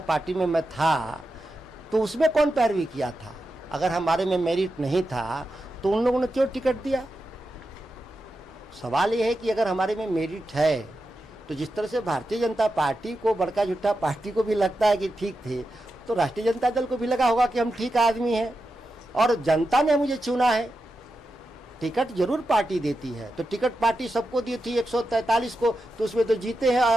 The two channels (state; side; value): normal; both; correlation 0.89